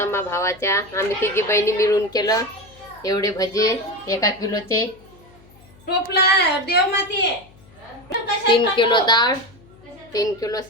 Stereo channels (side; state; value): left; noise; hum, 26 dB below the sound